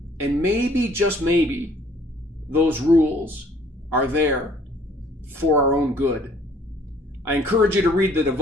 And maybe, just maybe, those rules are there for our own good. I encourage you to read the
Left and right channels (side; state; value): both; normal; correlation 0.58